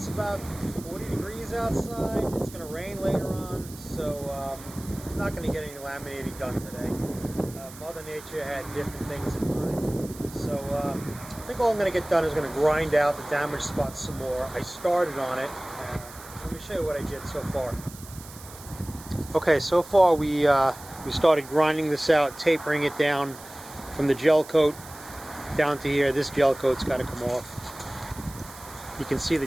about 40 degrees outside. It's going to rain later on, so I'm not going to get any laminating done today. Mother Nature had different things in mind. So I think all I'm going to get done is going to grind out the damaged spots some more. I started on it. Let me show you what I did so far. Okay, so far we started grinding this out, tapering it down from the gel coat down to here. This gel coat's got to come off. You can see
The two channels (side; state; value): right; noise; hiss, 17 dB below the sound